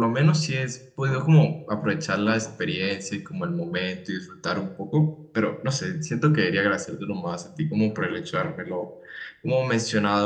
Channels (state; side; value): identical; both; correlation 1.00